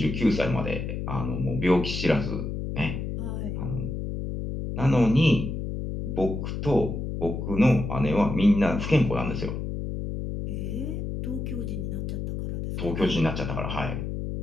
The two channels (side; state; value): left; noise; hum, 4 dB below the sound